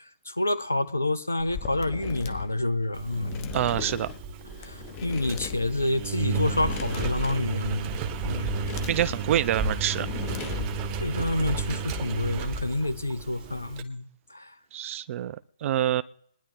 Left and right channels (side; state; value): both; inverted; correlation -0.59